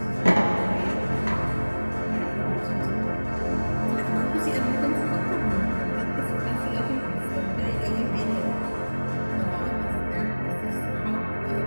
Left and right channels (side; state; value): both; inverted; correlation -1.00